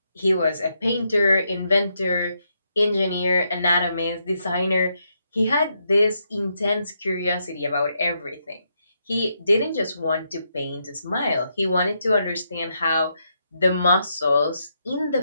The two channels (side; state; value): both; inverted; correlation -0.80